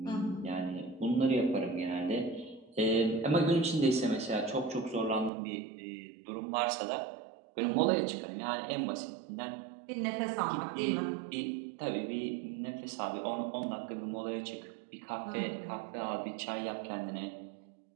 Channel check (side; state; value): left; drops out; at 5.3 s